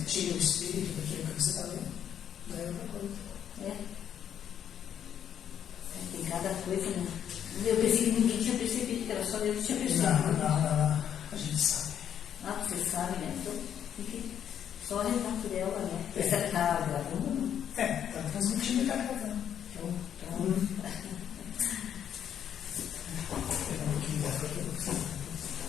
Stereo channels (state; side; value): quieter; right; 9.3 dB